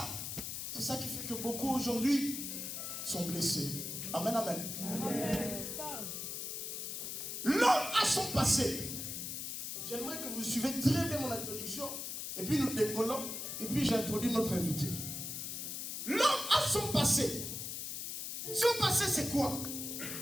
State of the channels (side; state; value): left; noise; hiss, 5 dB below the sound